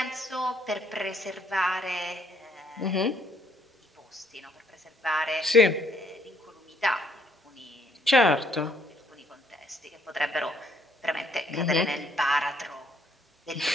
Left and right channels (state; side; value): normal; both; correlation 0.67